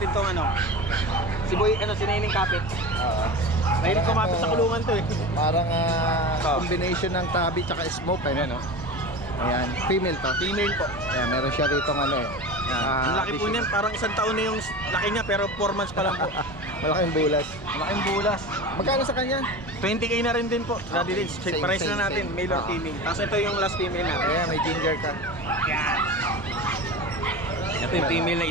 tong ano. Si Boy, si Neneng Kapit. Oo. Mahilig kumapit sa kulungan to eh. Parang Oh. combination ng tabi tsaka smoke. Ayan, no? Ayan, female to. Female po. Ayan, meron siya rito ano eh. Ang laki po niyan, parang isang taon na yung laki niya pero 4 months pa lang po. Malaking bulas. Malaking bulas. Magkano sa kanya? 20k na rin din po. Daddy Okay. Dance, check Same, price same, na natin, same. male or Ah. female. Tapos ito yung last female natin. Ayan, may ginger ka. Ito yung female na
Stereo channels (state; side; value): normal; both; correlation 0.30